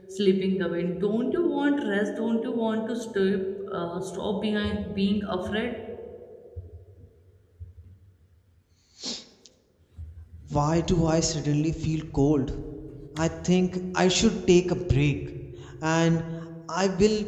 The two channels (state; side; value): identical; both; correlation 1.00